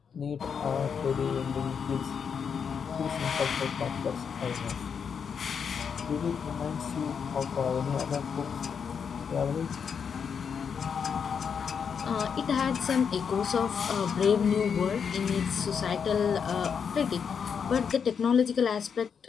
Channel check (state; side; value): quieter; right; 6.7 dB